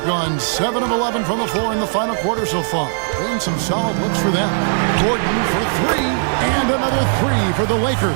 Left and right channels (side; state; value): left; silent; 67 dB below the other